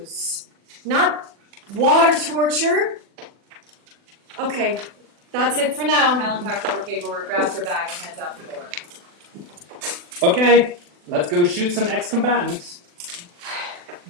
not water torture. Okay, that's it for now. Helen packs up her paperwork, grabs her bag, and heads out the door. Okay, let's go shoot some ex-combatants.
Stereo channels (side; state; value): left; late; 40 ms